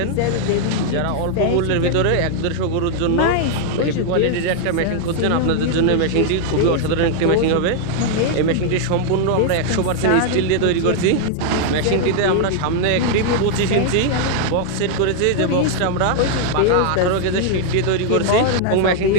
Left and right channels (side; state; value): both; different; correlation 0.00